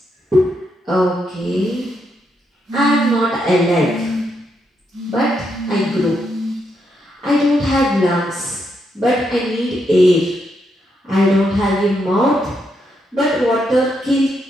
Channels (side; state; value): both; normal; correlation 0.80